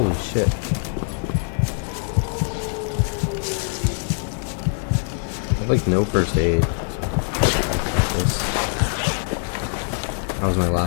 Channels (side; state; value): right; silent; digital silence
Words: shit. I have like no first aid. That was my